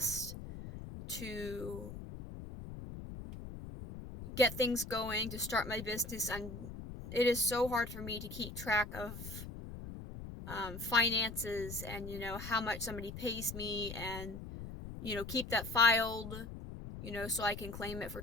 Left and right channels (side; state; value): left; noise; rumble, 10 dB below the sound